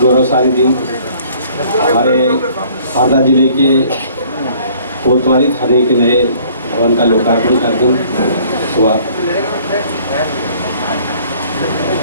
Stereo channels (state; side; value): inverted; both; correlation -0.57